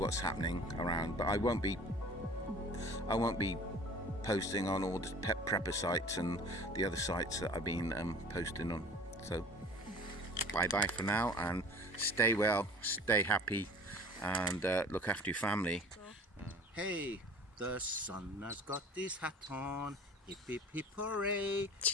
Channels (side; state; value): both; normal; correlation 0.44